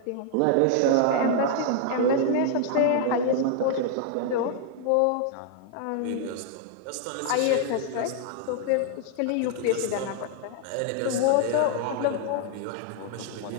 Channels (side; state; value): both; different; correlation 0.00